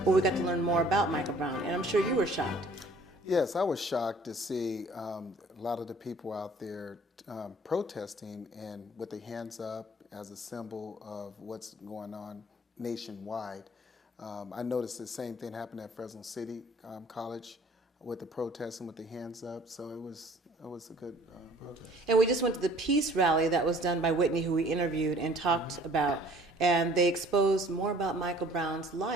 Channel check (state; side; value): normal; both; correlation 0.53